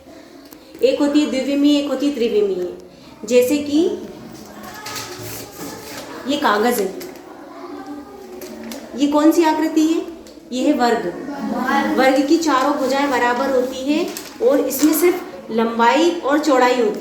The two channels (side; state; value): both; identical; correlation 1.00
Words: एक होती है द्विविमीय, एक होती है त्रिविमीय। जैसे कि ये कागज है, ये कौन सी आकृति है? ये है वर्ग। वर्ग की चारों भुजाएं बराबर होती है और इसमें सिर्फ लंबाई और चौड़ाई